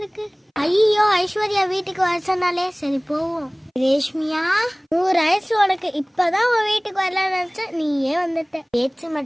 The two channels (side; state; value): both; identical; correlation 1.00